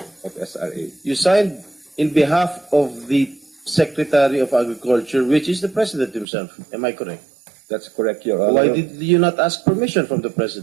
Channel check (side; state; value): left; drops out; at 6.2 s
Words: of SRA. You signed in behalf of the Secretary of Agriculture, which is the President himself. Am I correct? That's correct, Your Honor. Why did you not ask permission from the